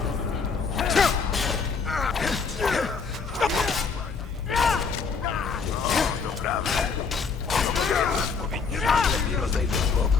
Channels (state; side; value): quieter; right; 5.3 dB